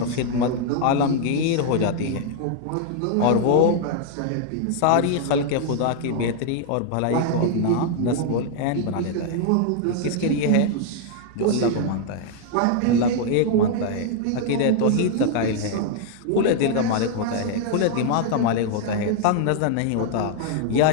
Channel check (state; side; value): different; both; correlation -0.01